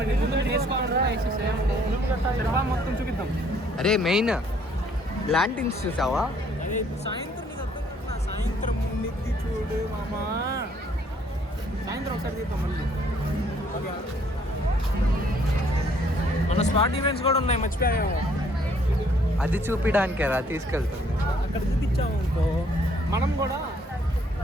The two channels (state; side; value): normal; both; correlation 0.64